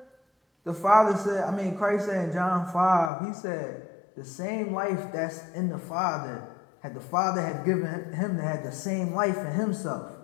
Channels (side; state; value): right; drops out; at 3.1 s